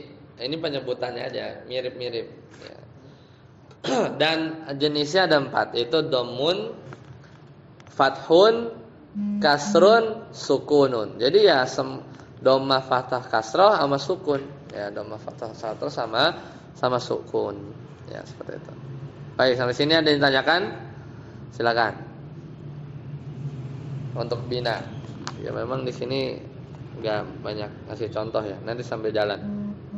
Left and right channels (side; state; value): both; identical; correlation 1.00